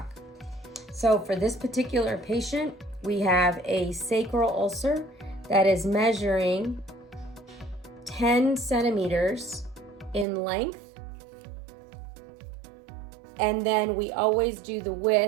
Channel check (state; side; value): drops out; left; at 10.2 s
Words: So for this particular patient, we have a sacral ulcer that is measuring 10 centimeters in length. And then we always do the